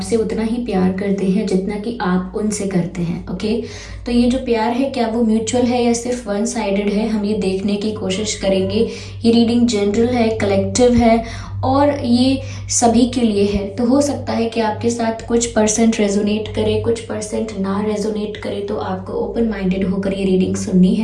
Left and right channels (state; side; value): identical; both; correlation 1.00